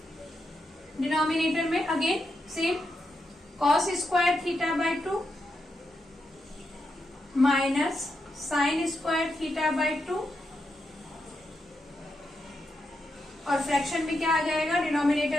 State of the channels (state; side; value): normal; both; correlation 0.84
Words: Denominator में again same cos square theta by 2 minus sine square theta by 2 और फ्रैक्शन में क्या आ जाएगा,